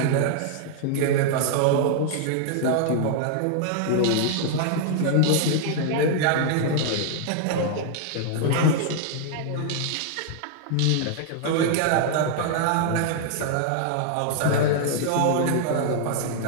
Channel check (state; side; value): different; both; correlation 0.00